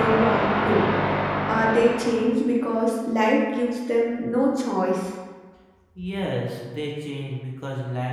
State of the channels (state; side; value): identical; both; correlation 1.00